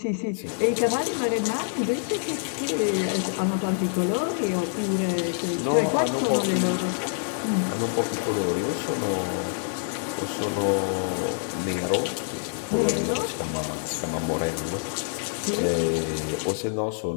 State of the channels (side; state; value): right; silent; digital silence